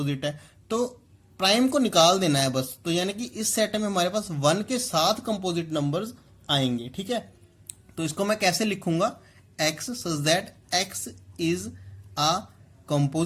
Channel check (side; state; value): both; identical; correlation 1.00